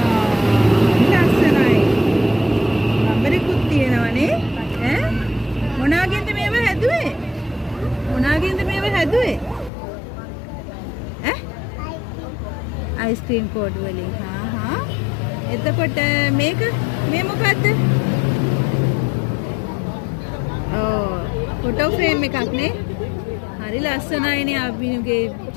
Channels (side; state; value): right; drops out; at 9.7 s